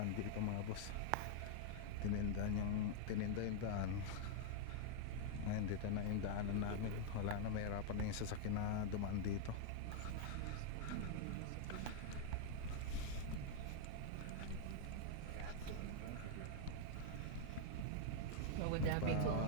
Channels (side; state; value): both; different; correlation -0.01